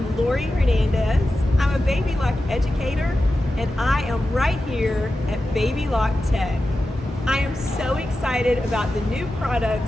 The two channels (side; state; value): both; normal; correlation 0.92